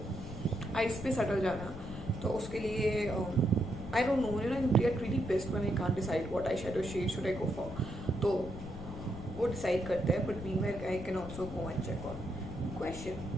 आइस पे सटल जाना, तो उसके लिए I don't know, I get really pissed when I can't decide what I shadow shade should I go for. तो वो डिसाइड करते हैं, but meanwhile I can also go and check on question.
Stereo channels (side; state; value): left; noise; rumble, 10 dB below the sound